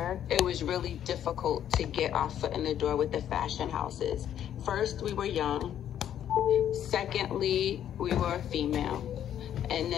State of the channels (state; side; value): quieter; right; 10.3 dB